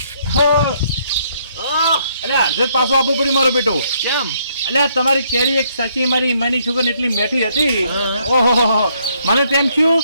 અરે અડધે પાછો આપવું પડ્યું મારો બેટો કેમ એટલે તમારી કેરી એક સાચી મારી માની છોકરી એટલી મેઠી હતી હા. ઓહો મને તેમ થયું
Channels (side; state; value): both; inverted; correlation -0.70